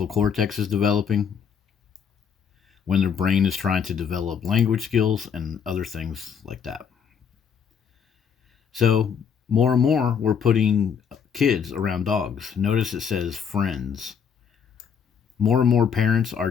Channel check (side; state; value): right; quieter; 7.1 dB